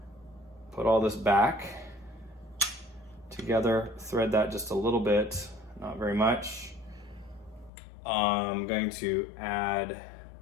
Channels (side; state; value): right; drops out; at 7.7 s